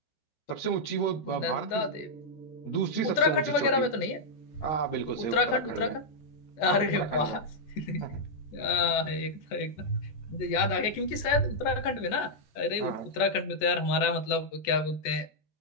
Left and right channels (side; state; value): right; late; 14 ms